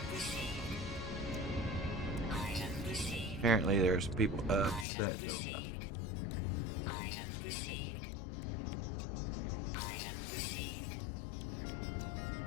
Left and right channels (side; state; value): right; drops out; at 4.9 s